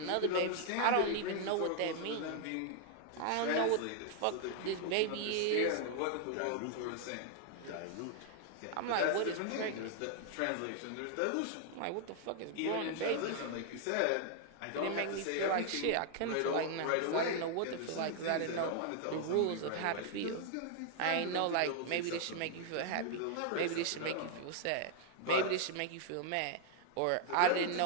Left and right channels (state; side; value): different; both; correlation 0.00